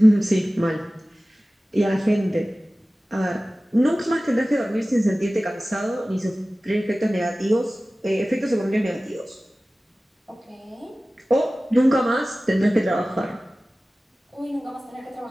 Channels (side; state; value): both; normal; correlation 0.97